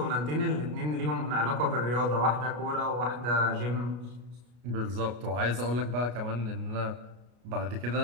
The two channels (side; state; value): left; late; 33 ms